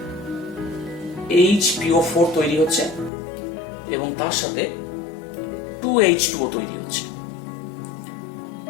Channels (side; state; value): right; drops out; at 3.1 s